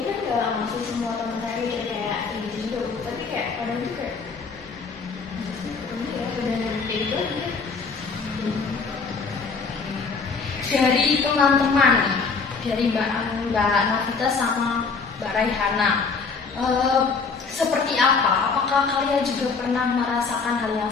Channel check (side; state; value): right; quieter; 4.9 dB